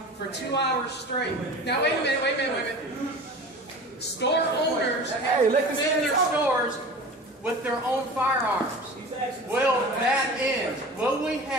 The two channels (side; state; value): both; normal; correlation 0.37